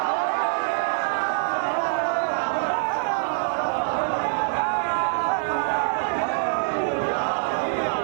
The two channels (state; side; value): silent; left; digital silence